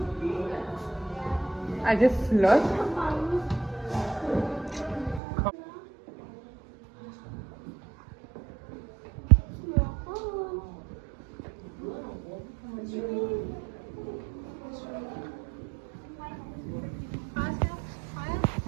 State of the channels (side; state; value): left; drops out; at 5.2 s